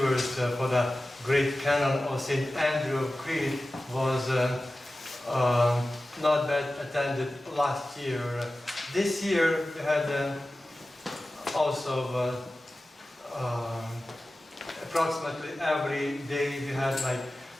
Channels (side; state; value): both; normal; correlation 0.95